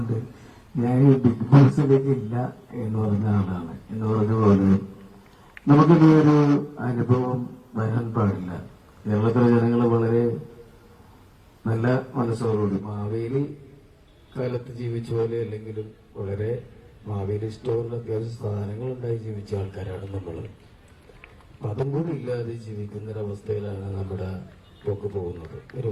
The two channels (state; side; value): identical; both; correlation 1.00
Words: ഞാൻ ഈ ബിഗ് ബോസിലേക്ക് ഇല്ല എന്ന് പറഞ്ഞ ആളാണ്. എന്ന് പറഞ്ഞ പോലെ നമുക്കിനി ഒരു അനുഭവം വരാൻ പാടില്ല. കേരളത്തിലെ ജനങ്ങൾ വളരെ നല്ല മനസ്സോടുകൂടി മാവേലി കാലത്ത് ജീവിച്ച പോലെ അല്ലെങ്കിലും വളരെ മാവേലി സ്റ്റോറിൽ അത്യാവശ്യം സാധനങ്ങളുണ്ടായി ജീവിച്ച ആൾക്കാരാണ് നമ്മൾ. അതും കൂടി ഇല്ലാതെ ജീവിക്കുന്നൊരവസ്ഥയിലാണ് നമ്മുടെ പോക്ക് പോകുന്നത്.